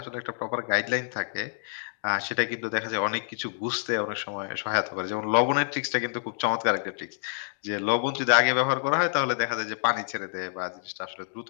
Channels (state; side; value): silent; right; digital silence